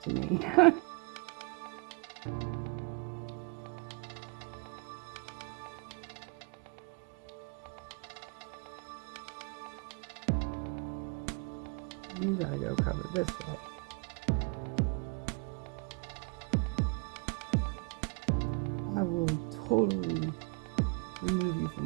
me. You gotta go cover this way. I will totally remove you from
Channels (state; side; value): quieter; left; 30.5 dB